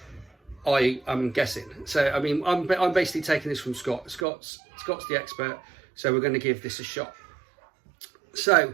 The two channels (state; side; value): drops out; left; at 4.2 s